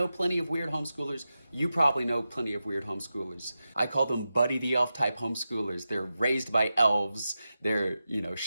plenty of weird homeschoolers. You probably know plenty of weird homeschoolers. I call them Buddy the Elf type homeschoolers. They're raised by elves. They're,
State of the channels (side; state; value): both; inverted; correlation -0.92